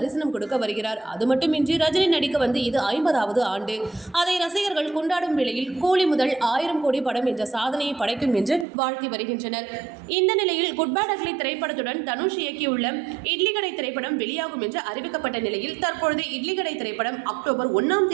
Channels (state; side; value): drops out; left; at 8.7 s